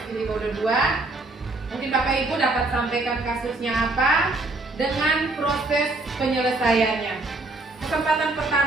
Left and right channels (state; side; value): quieter; left; 3.0 dB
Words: Giliwodo 2. Mungkin Bapak Ibu dapat sampaikan kasusnya apa dengan proses penyelesaiannya. Kesempatan